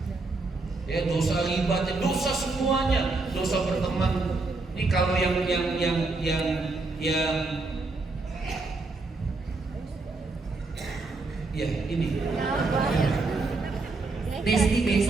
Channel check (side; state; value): left; quieter; 3.5 dB